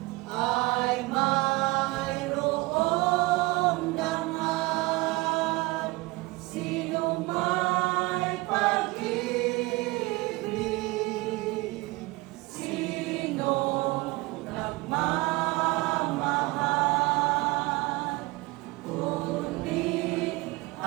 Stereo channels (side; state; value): left; quieter; 22.8 dB